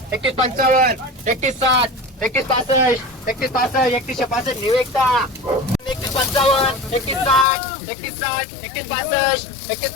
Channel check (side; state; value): right; drops out; at 7.5 s